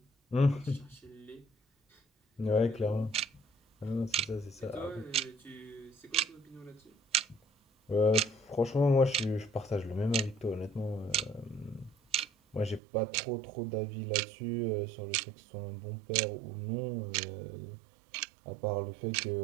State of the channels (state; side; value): drops out; left; at 12.8 s